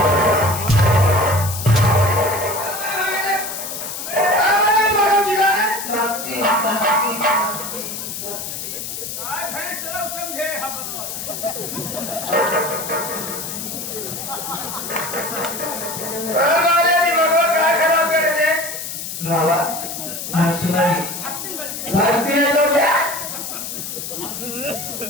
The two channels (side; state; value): left; noise; hiss, 6 dB below the sound